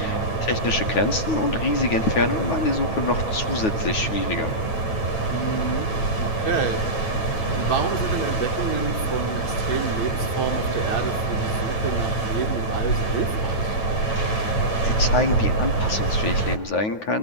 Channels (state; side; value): late; right; 9.0 ms